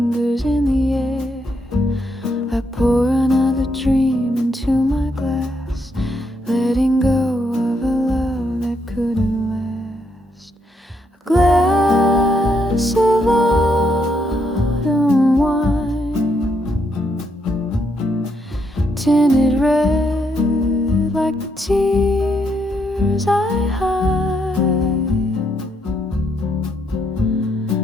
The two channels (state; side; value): normal; both; correlation 0.76